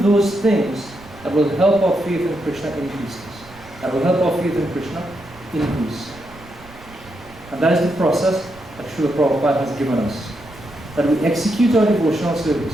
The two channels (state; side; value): noise; right; rumble, 21 dB below the sound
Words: those things that will help our faith in Krishna increase. That will help our faith in Krishna increase. And that is the process that Srila Prabhupada has given us. That we execute our devotional